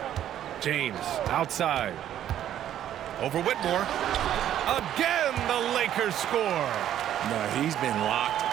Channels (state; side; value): quieter; left; 11.1 dB